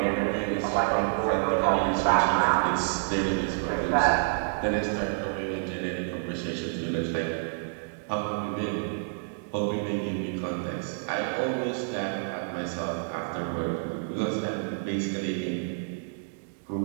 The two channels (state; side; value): silent; left; digital silence